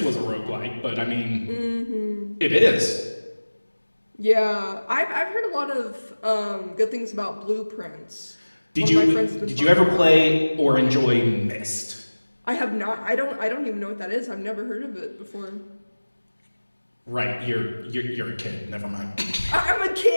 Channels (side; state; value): both; inverted; correlation -1.00